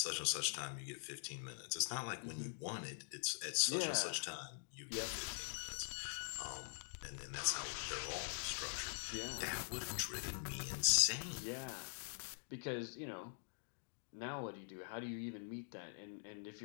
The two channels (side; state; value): right; silent; digital silence